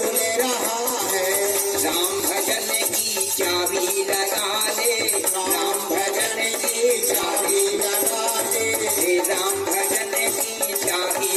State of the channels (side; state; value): both; identical; correlation 1.00